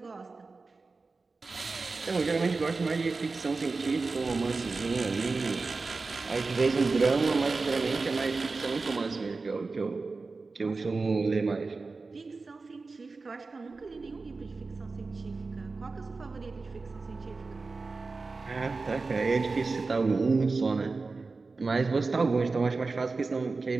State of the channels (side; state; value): left; quieter; 4.0 dB